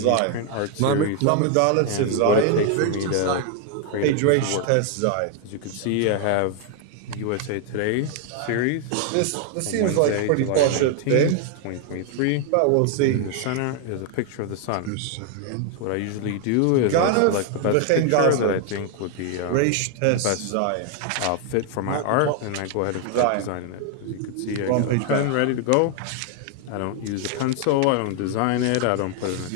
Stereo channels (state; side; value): different; both; correlation 0.00